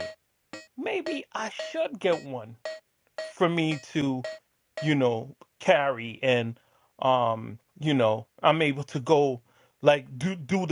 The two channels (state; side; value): identical; both; correlation 1.00